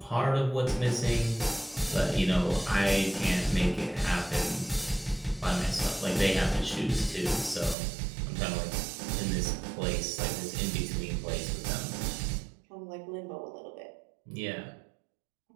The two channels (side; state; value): left; drops out; at 7.8 s